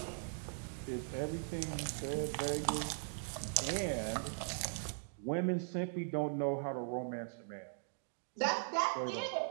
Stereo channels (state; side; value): silent; left; digital silence